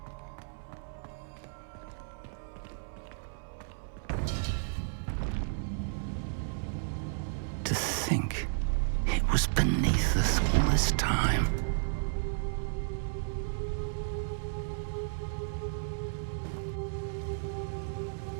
To think it was beneath us all this time.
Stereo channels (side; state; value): left; silent; 56 dB below the other